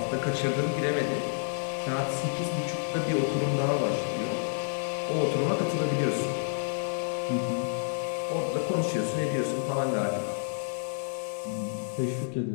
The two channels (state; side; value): silent; right; digital silence